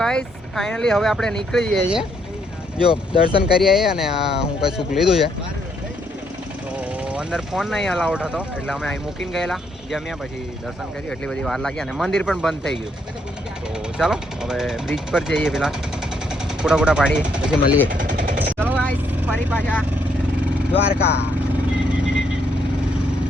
ફાઇનલી હવે આપણે નીકળી જઈએ છીએ. જો દર્શન કરી આવીએ અને આ હું કઈ સુખ લીધું છે તો અંદર ફોન નહીં અલાઉડ હતો એટલે અમે અહીં મૂકીને ગયેલા. જમ્યા પછી દર્શન કર્યું. એટલી બધી વાર લાગી અને મંદિર પણ બંધ થઈ ગયું. તો ચાલો હવે બ્રિજ પર જઈએ, પેલા ફોટા પાડીએ પછી મળીએ. ચલો ગાઈસ ફરી પાછા દ્વારકા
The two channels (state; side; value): normal; both; correlation 0.73